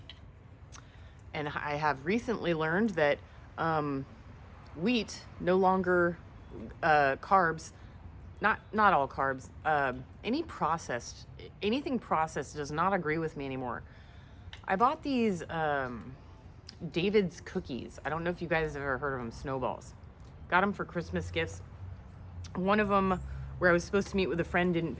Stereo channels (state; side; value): identical; both; correlation 1.00